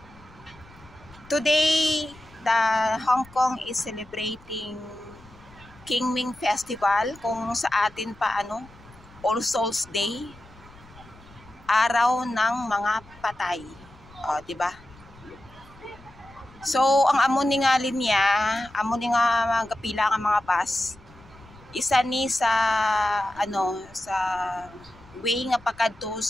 Today, the Hong Kong is celebrating Qingming Festival, kung sa atin pa All Souls Day. Araw ng mga patay. Di ba? So, ang amo ni nga linya, amo ni nga magapila nga mga bus. Isa ni sa sa way nga pakadto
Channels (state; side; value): noise; left; rumble, 24 dB below the sound